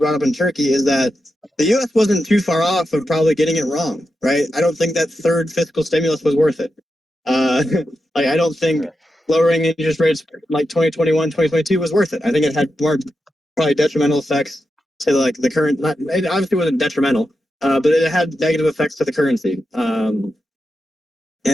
up in Turkey is that the U.S. wasn't too far off of probably getting it wrong, right? I don't think that third fiscal stimulus was worth it. Like I don't think lowering interest rates like 2021, 2022 was worth it. I think it had more probably detrimental effects to like the current. It obviously wasn't detrimental, but it had negative effects to the currency. And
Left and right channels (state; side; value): normal; both; correlation 0.88